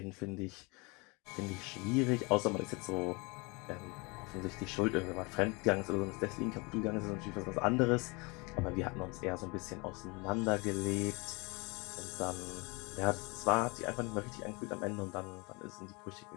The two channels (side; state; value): right; quieter; 27.8 dB